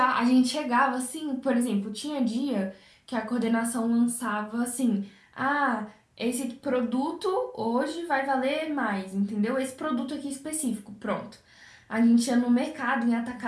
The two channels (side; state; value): both; identical; correlation 1.00